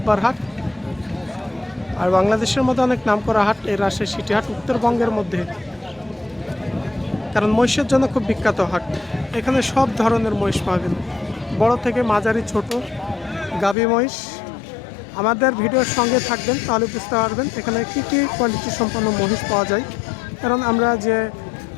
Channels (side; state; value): right; drops out; at 13.8 s